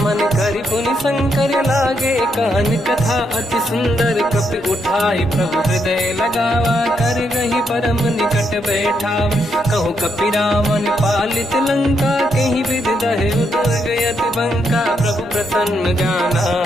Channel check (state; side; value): normal; both; correlation 0.78